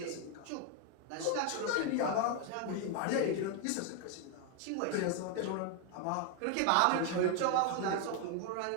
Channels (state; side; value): different; both; correlation 0.01